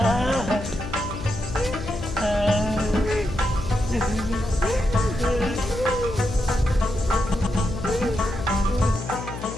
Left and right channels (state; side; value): noise; left; hum, 9 dB below the sound